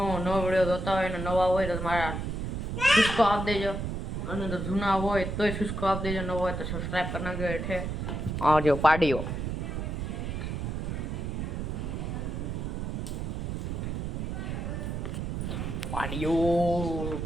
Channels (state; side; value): noise; right; rumble, 3 dB below the sound